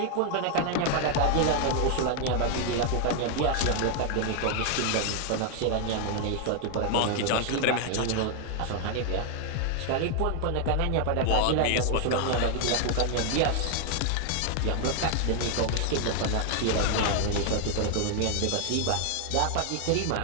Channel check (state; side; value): different; both; correlation 0.00